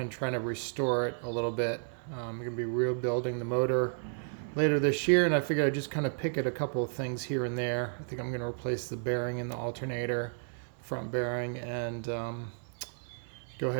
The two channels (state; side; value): silent; left; digital silence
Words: try to restore it a little bit. I'm going to be rebuilding the motor later this year, and I figured I'd just kind of pick at a couple of things here and there. I think I'm going to replace the bearing in the alternator, front bearing, and go